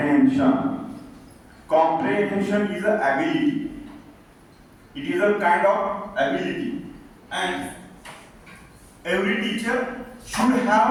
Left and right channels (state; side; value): identical; both; correlation 1.00